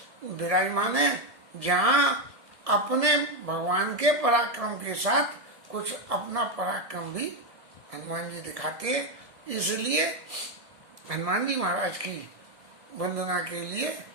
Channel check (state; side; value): late; left; 1.7 ms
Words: है, जहाँ अपने भगवान के पराक्रम के साथ कुछ अपना पराक्रम भी हनुमान जी दिखाते हैं। इसलिए हनुमान जी महाराज की वंदना के लिए